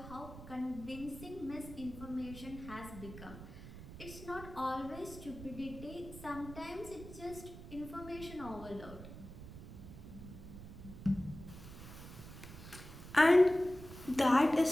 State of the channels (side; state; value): right; noise; rumble, 13 dB below the sound